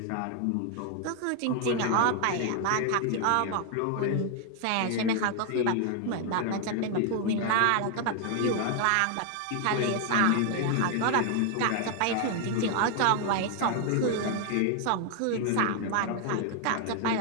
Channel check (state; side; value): different; both; correlation 0.00